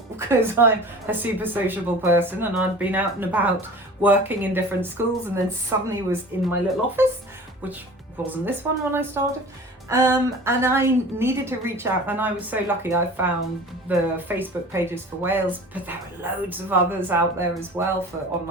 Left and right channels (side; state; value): both; normal; correlation 0.40